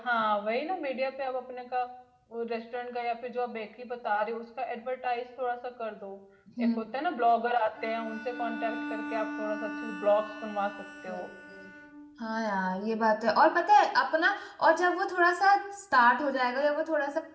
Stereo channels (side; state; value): both; identical; correlation 1.00